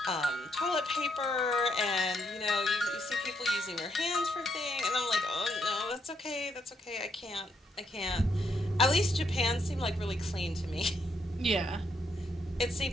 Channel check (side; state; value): both; normal; correlation 0.75